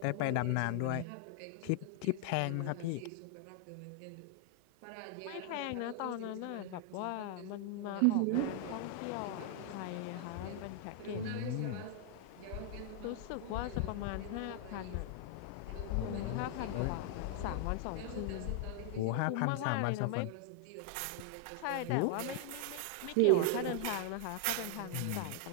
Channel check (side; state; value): both; different; correlation 0.00